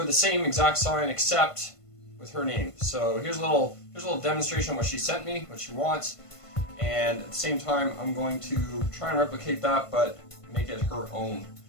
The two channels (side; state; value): right; late; 1.5 ms